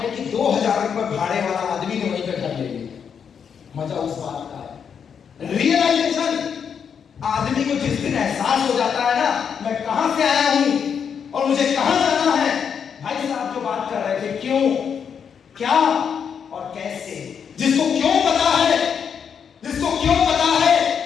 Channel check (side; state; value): right; quieter; 7.2 dB